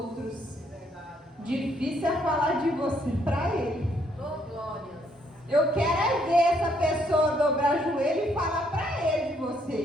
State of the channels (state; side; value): normal; both; correlation 0.70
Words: Difícil é falar de você para ele. Eu quero é ver essa pessoa dobrar o joelho e falar para ele de